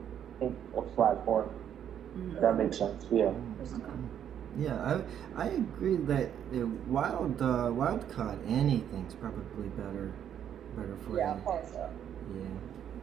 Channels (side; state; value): left; quieter; 9.5 dB